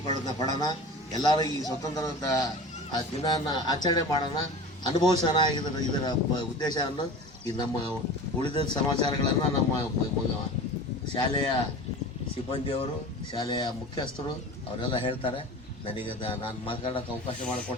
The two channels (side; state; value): both; normal; correlation 0.36